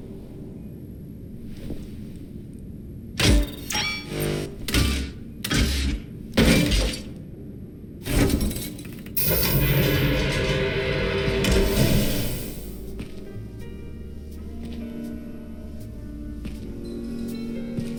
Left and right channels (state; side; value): identical; both; correlation 1.00